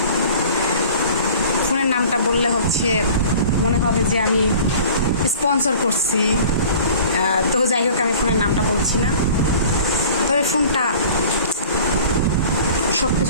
ফোনের নামটা বললে হচ্ছে মনে হবে যে আমি স্পন্সর করছি। তো যাই হোক, আমি ফোনের নামটা বলছি না। তবে ফোনটা সব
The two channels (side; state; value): both; inverted; correlation -0.45